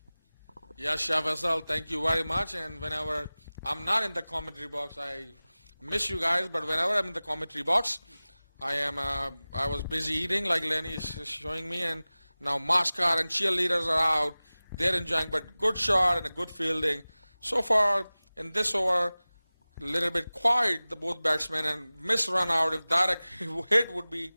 Yes, Shah Faisal, thank you very much. And whenever I'm not in the commentary box, I miss you guys. But whenever I'm in the commentary box, I was busy eating, like Lenny is showing me, and now Mascot and cheerleaders are out. They're enjoying, but good shot and a good fielding. So far in this over, a little bit quiet, the both batsmen, and miss run out. If direct hit would be,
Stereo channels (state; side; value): inverted; both; correlation -0.98